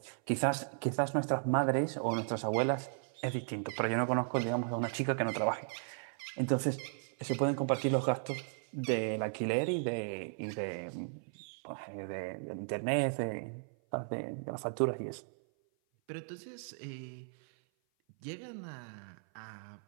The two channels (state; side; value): silent; left; 54 dB below the other